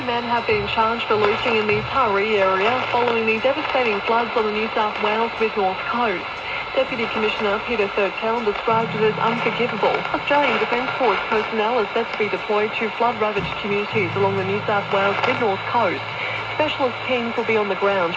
men have been charged for looting in the Taree area following the devastating floods on the New South Wales mid-north coast. Deputy Commissioner Peter Thurtell described it as unforgivable. Australian Defence Force personnel are set to be deployed to flood-ravaged communities along the New South Wales mid-north coast. Specialist teams will be on the ground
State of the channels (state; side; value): identical; both; correlation 1.00